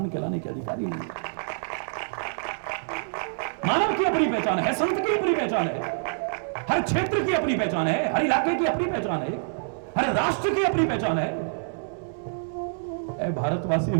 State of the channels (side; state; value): left; silent; digital silence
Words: कहलाने के अधिकारी नहीं है। मानव की अपनी पहचान है, संत की अपनी पहचान है, हर क्षेत्र की अपनी पहचान है, हर इलाके की अपनी पहचान है, हर राष्ट्र की अपनी पहचान है। ऐ भारतवासी